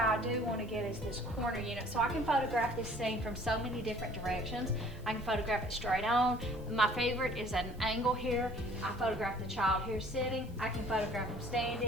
do want to get is this corner unit, so I can photograph this scene from so many different directions. I can photograph it straight on. My favorite is at an angle here. I photograph the child here sitting. I can photograph them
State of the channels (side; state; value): both; normal; correlation 0.53